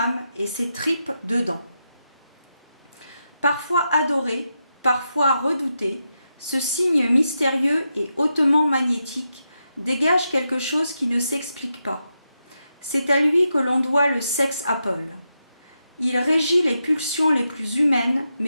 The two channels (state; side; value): inverted; both; correlation -0.86